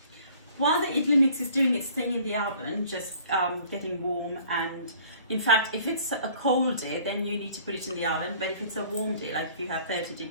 While the idli mix is doing its thing in the oven, just getting warm, and in fact if it's a cold day then you need to put it in the oven, but if it's a warm day, like if you have 30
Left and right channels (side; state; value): both; inverted; correlation -0.53